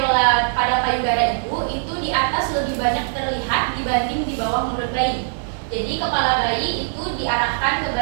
pada payudara ibu itu di atas lebih banyak terlihat dibanding di bawah mulut bayi. Jadi kepala bayi itu diarahkan ke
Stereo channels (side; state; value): left; silent; 65 dB below the other